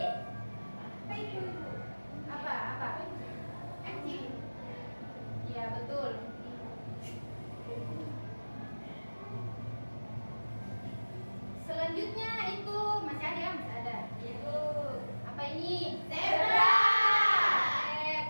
Apa itu, Ibu? apa? Anjing. Ya, betul. Selanjutnya itu masih ada, Ibu. Apa ini? Zebra.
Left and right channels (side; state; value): both; inverted; correlation -1.00